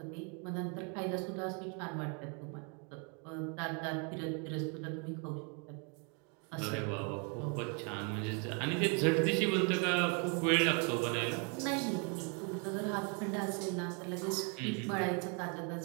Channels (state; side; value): quieter; left; 36.6 dB